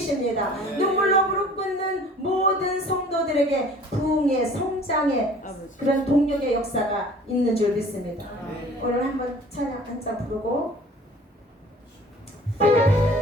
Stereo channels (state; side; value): normal; both; correlation 0.49